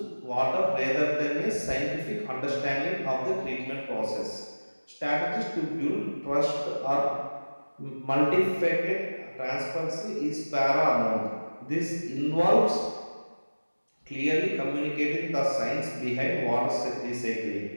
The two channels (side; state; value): both; inverted; correlation -1.00